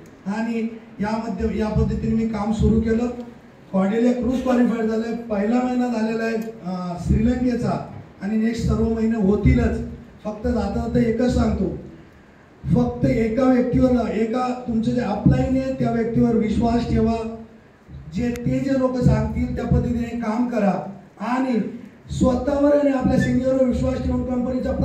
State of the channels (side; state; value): both; identical; correlation 1.00